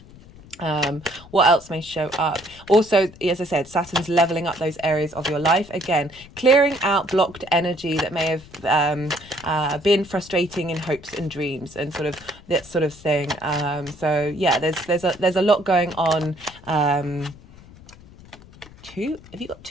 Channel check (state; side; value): noise; left; rumble, 21 dB below the sound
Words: What else may show up? Also, as I said, Saturn's leveling up those areas of your life. Again, clearing out blocked energy that may have been frustrating in hopes and dreams and sort of that sort of thing. So yeah, there's a lot going on. Have you got